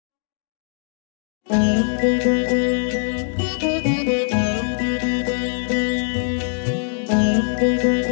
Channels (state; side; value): silent; right; digital silence